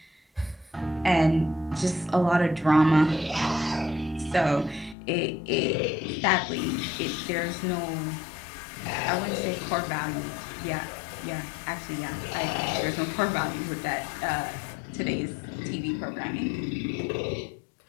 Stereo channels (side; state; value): right; drops out; at 5.0 s